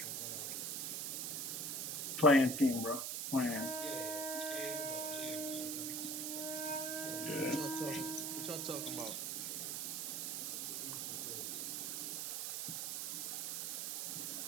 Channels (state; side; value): noise; right; hiss, 1 dB below the sound